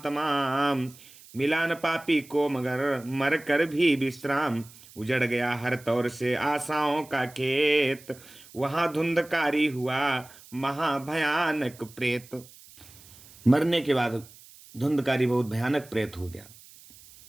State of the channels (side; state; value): right; noise; hiss, 22 dB below the sound